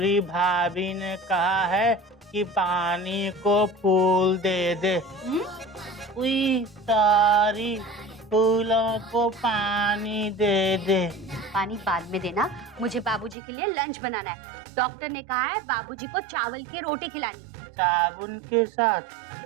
भाभी ने कहा है कि पानी को फूल दे दे। उई, सारी फूलों को पानी दे दे। पानी बाद में देना, मुझे बाबूजी के लिए लंच बनाना है। डॉक्टर ने कहा है बाबूजी को चावल की रोटी खिलानी। साबुन के साथ?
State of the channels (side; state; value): left; drops out; at 13.4 s